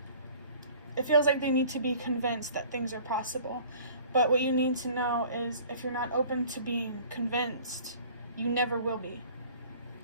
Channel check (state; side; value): inverted; both; correlation -0.49